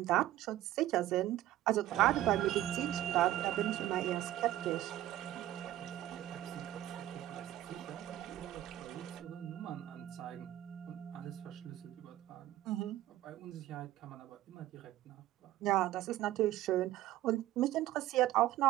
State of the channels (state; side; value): quieter; left; 14.2 dB